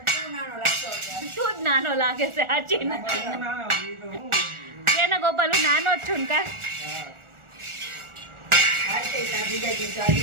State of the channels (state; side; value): late; left; 1.4 ms